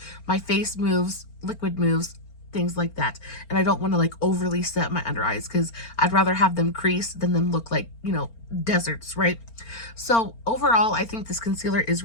My face moves, liquid moves, things like that, and I don't want to like overly set my under eyes because I'd rather have them crease than them look like, you know, deserts, right? So overall, I think this concealer is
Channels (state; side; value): late; right; 4.4 ms